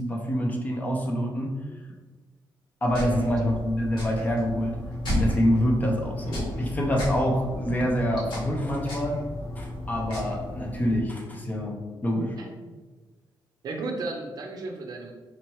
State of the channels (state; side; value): normal; both; correlation 0.84